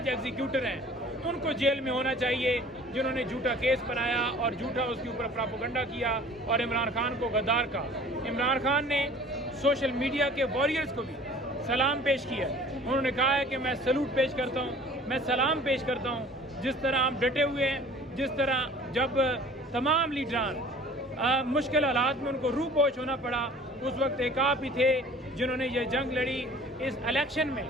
ایگزیکیوٹر ہیں ان کو جیل میں ہونا چاہیے، جنہوں نے جھوٹا کیس بنایا اور جھوٹا اس کے اوپر پراپوگنڈا کیا اور عمران خان کو غدار کا۔ عمران خان نے سوشل میڈیا کے واریئرز کو بھی سلام پیش کیا، انہوں نے کہا ہے کہ میں سلوٹ پیش کرتا ہوں، میں سلام پیش کرتا ہوں، جس طرح ہم ڈٹے ہوئے ہیں، جس طرح جب تمام لیڈران مشکل حالات میں ان کو روح پوش ہونا پڑا، اس وقت ایک آپ ہی تھے جنہوں نے یہ جنگ لڑی۔ اس الیکشن میں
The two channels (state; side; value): normal; both; correlation 0.48